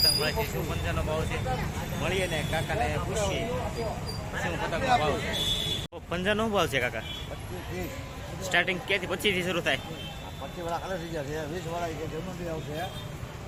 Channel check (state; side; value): identical; both; correlation 1.00